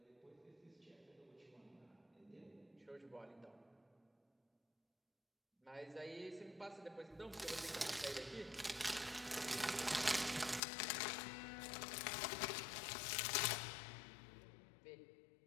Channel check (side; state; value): right; drops out; at 10.6 s